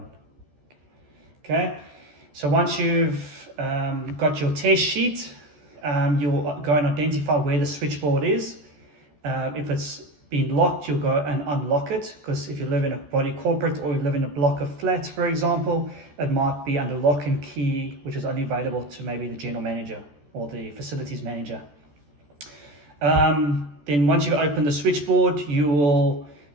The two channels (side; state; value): left; late; 14 ms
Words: Okay, so once you've got your test sheet, you'll go and identify where the switchboard is. If it's been locked, you'll go and unlock it, because if you live in a body corporate or you live in a block of flats, for example, it might be under lock and key, which is only available to maybe the general manager or the facilities manager. Then once you open the switchboard, you will